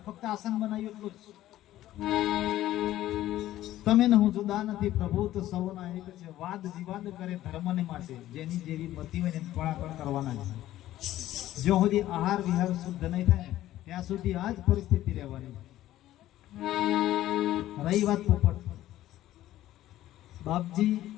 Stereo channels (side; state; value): right; quieter; 14.1 dB